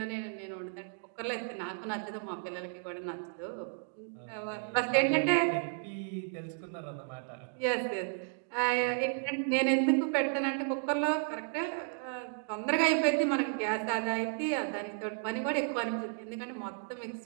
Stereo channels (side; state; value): left; silent; 56 dB below the other